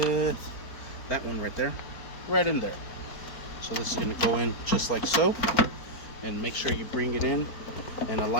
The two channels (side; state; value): right; late; 4.5 ms